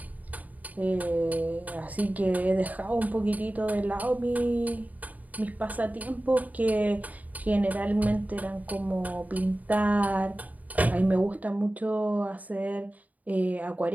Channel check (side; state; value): left; late; 0.075 ms